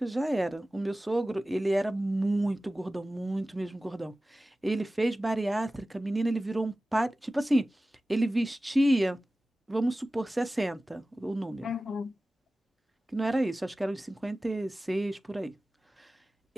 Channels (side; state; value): both; normal; correlation 0.96